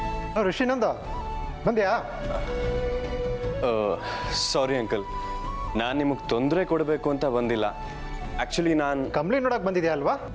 Rishinanda ಬಂದ್ಯಾ? ಸಾರಿ ಅಂಕಲ್, ನಾನು ನಿಮಗೆ ತೊಂದರೆ ಕೊಡಬೇಕು ಅಂತ ಬಂದಿಲ್ಲ. ಆ್ಯಕ್ಚುಲಿ ನಾನು ಕಂಪ್ಲೇಂಟ್ ನೋಡಕ್ ಬಂದಿದ್ಯಾ ಅಲ್ವಾ?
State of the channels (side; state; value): both; identical; correlation 1.00